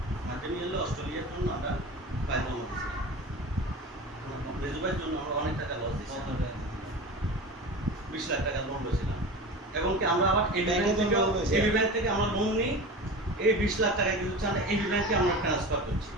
অস্ট্রেলিয়ার জন্য আমরা ফাইল জমা দিয়েছিলাম। মেজু ভাইয়ের জন্য আমরা অনেক টাকা লস দিয়েছি, 20 লাখ টাকা লোন লইছিলাম। এবং কি আমরা আবার এবি ব্যাংক থেকে আমরা লোন নিই, এই 20 লাখ টাকা কিন্তু আমরা এবি ব্যাংকে আমরা ট্রান্সফার করছি,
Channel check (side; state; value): both; normal; correlation 0.31